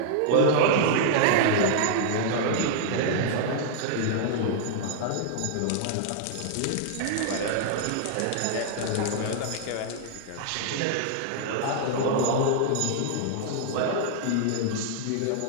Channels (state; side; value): different; both; correlation -0.01